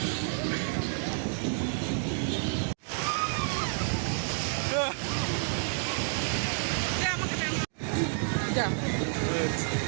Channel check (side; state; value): left; silent; 56 dB below the other